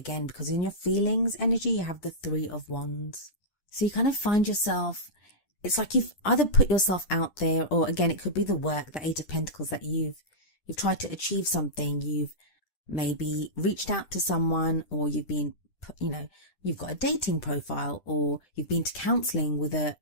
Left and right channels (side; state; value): right; late; 10 ms